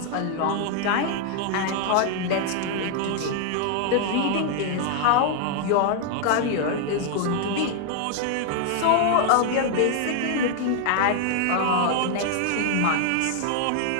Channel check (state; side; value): different; both; correlation 0.00